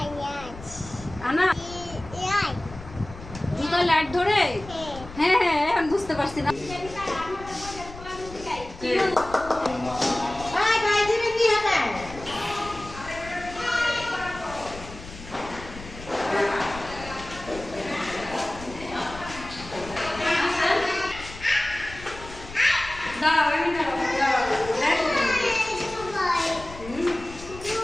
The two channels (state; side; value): noise; left; rumble, 15 dB below the sound